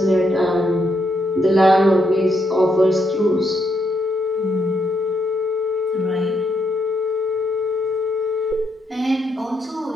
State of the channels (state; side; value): normal; both; correlation 0.77